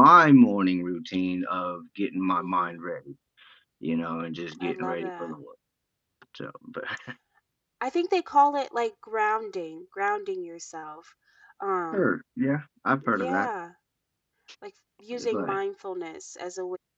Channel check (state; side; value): identical; both; correlation 1.00